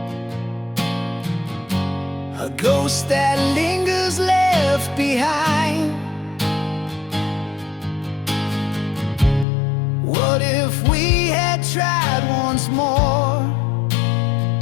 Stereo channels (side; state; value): right; drops out; at 9.5 s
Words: a ghost that lingers left behind. What if we had tried once more?